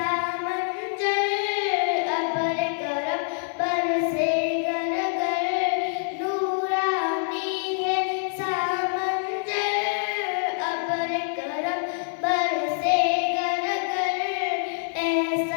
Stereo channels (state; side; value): silent; right; digital silence